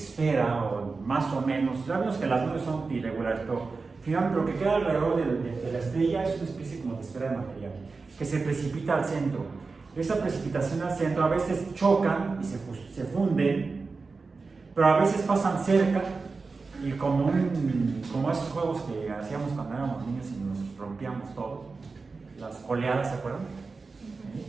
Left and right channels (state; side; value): quieter; left; 4.2 dB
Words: o más o menos, ya vemos que las nubes son irregulares, pero finalmente lo que queda alrededor de la estrella es una especie como de esfera de material que se precipita al centro. Esa precipitación al centro a veces chocan y se funden, pero a veces pasan cerca y como esos juegos que hacíamos cuando éramos niños y nos rompíamos todo, las oleadas, ¿se acuerdan?